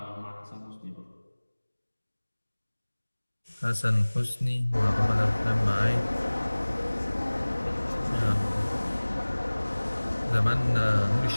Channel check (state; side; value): inverted; both; correlation -1.00